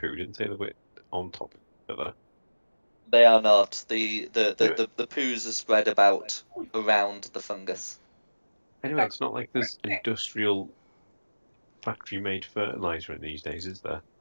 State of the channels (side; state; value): both; inverted; correlation -1.00